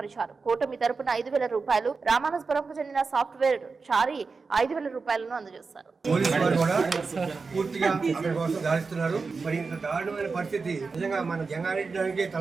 కూటమి తరపున 5,000 రూపాయలు, రామానస్పురంకు చెందిన సాఫ్ట్వేర్ చారి 5,000 రూపాయలను అందజేస్తారు. మరి ఇంత దారుణమైన పరిస్థితి నిజంగా మన జంగారెడ్డి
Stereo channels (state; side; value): quieter; left; 4.5 dB